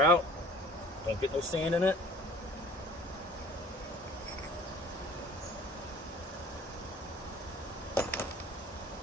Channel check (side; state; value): both; normal; correlation 0.47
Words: out. Don't get no sand in it.